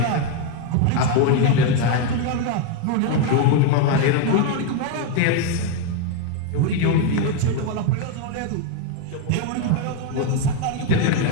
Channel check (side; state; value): both; different; correlation 0.02